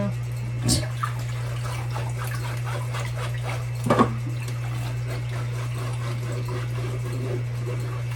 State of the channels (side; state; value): both; identical; correlation 1.00